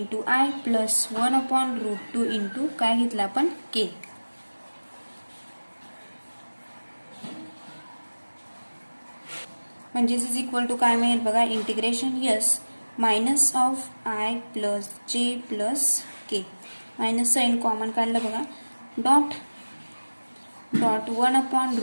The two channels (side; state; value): both; inverted; correlation -1.00